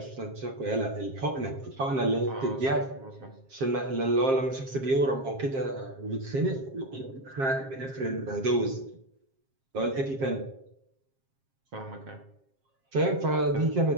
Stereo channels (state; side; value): late; left; 7.5 ms